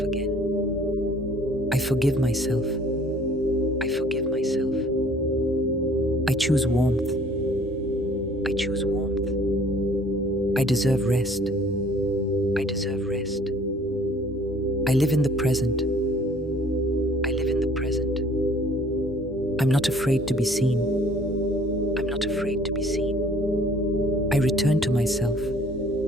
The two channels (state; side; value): normal; both; correlation 0.55